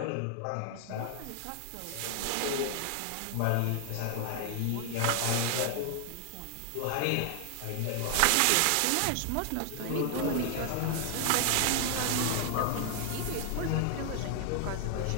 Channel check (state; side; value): different; both; correlation 0.00